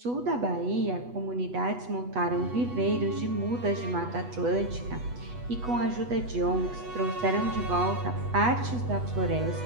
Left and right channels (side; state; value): left; late; 8.2 ms